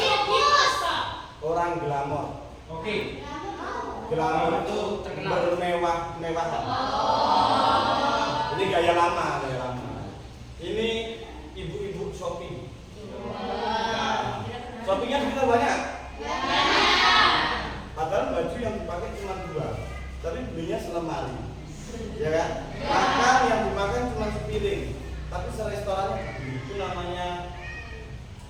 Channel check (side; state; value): both; identical; correlation 1.00